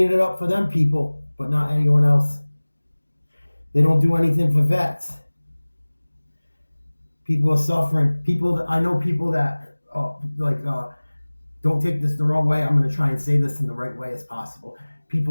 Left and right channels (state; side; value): inverted; both; correlation -1.00